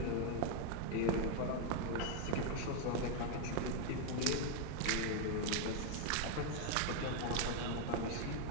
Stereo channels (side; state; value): both; different; correlation 0.01